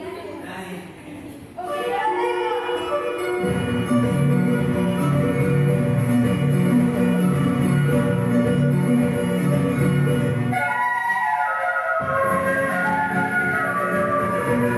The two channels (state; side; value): identical; both; correlation 1.00